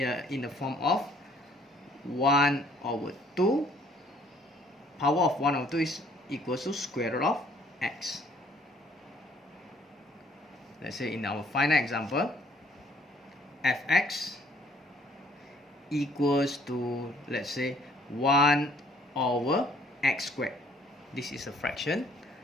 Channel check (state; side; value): normal; both; correlation 0.61